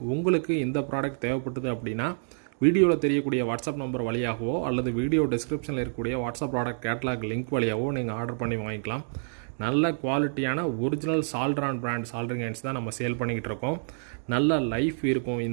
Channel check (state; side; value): silent; left; digital silence